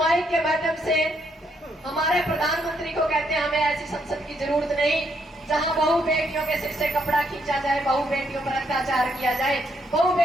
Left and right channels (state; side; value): normal; both; correlation 0.74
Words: के माध्यम से हमारे प्रधानमंत्री को कहते हैं हमें ऐसी संसद की जरूरत नहीं जहां बहु बेटियों के सिर से कपड़ा खींचा जाए, बहु बेटियों पर अत्याचार किया जाए, बहु